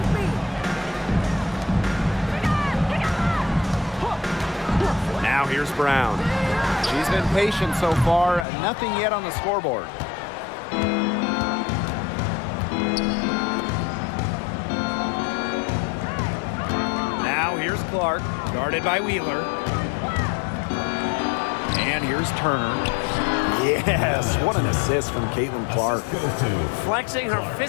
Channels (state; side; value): drops out; right; at 8.5 s